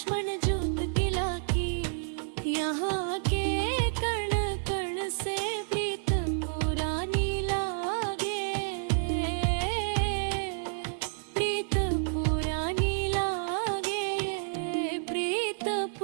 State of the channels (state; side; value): silent; left; digital silence